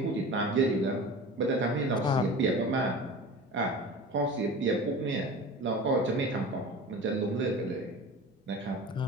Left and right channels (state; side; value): normal; both; correlation 0.35